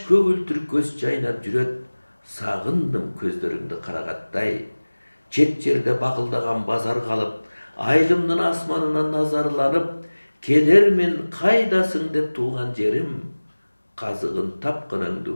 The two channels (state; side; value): inverted; both; correlation -1.00